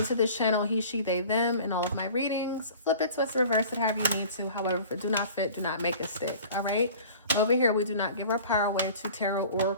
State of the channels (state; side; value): inverted; both; correlation -0.44